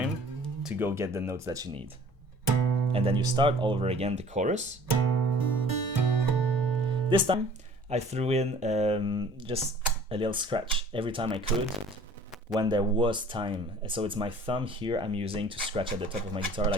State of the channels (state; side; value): normal; both; correlation 0.50